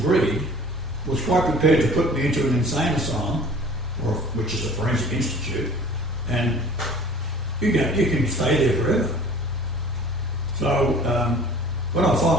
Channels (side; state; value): both; normal; correlation 0.47